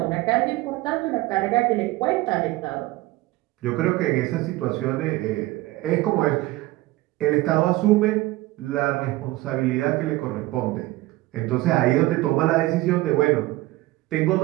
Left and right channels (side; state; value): left; quieter; 18.5 dB